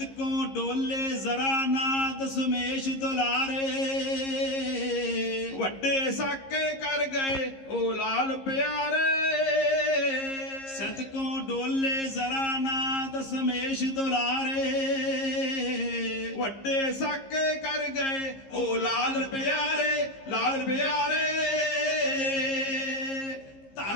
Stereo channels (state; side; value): late; right; 15 ms